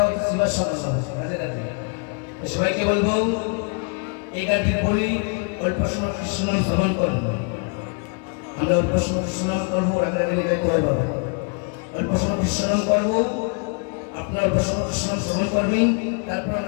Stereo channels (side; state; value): right; quieter; 36.6 dB